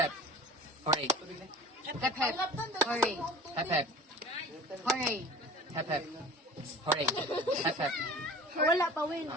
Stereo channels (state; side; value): normal; both; correlation 0.43